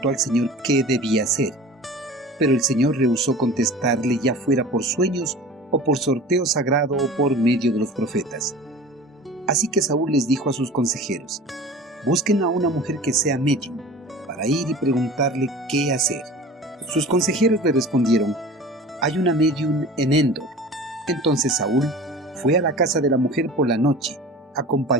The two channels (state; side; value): normal; both; correlation 0.39